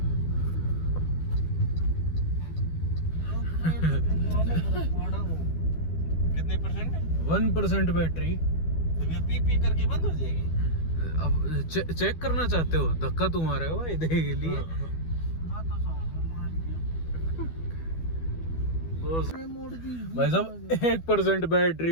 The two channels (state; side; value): late; right; 12 ms